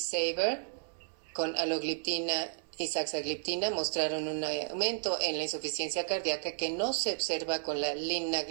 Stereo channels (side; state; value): left; silent; digital silence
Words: con alogliptina y saxagliptina mostraron un aumento en la insuficiencia cardíaca que no se observa con la